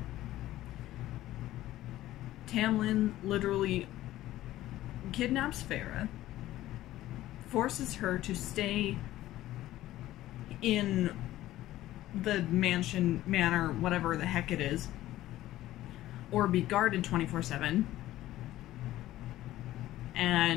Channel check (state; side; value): quieter; right; 14.9 dB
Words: Tamlin literally kidnaps Farah, forces her to stay in the manor, whatever the heck it is, or be guarded 24/7.